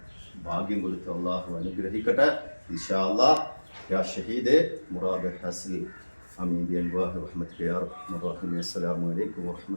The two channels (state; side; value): inverted; both; correlation -1.00